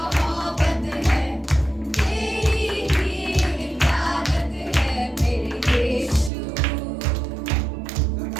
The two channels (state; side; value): drops out; left; at 6.3 s